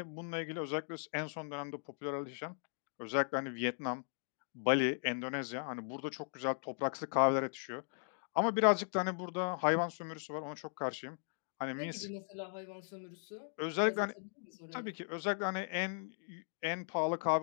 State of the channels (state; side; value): silent; right; digital silence